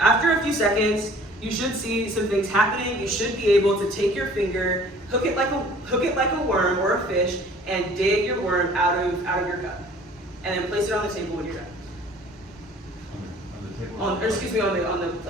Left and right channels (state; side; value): normal; both; correlation 0.51